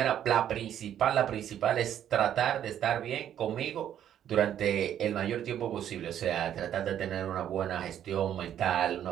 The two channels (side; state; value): left; quieter; 10.4 dB